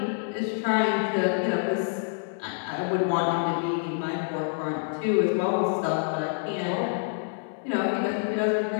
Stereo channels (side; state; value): right; silent; digital silence